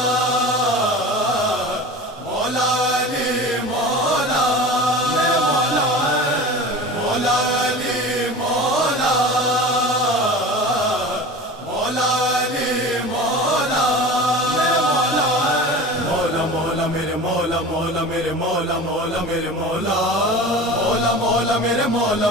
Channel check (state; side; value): normal; both; correlation 0.35